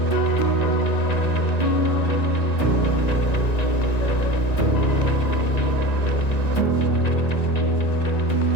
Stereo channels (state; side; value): late; right; 1.9 ms